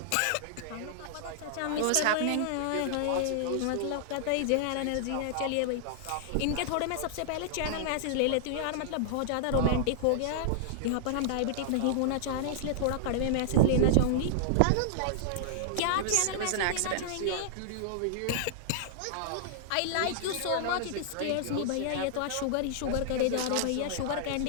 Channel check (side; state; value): both; different; correlation -0.01